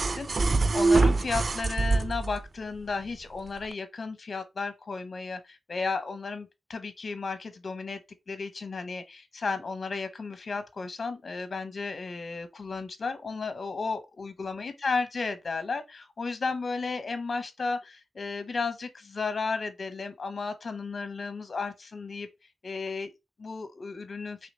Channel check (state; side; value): normal; both; correlation 0.90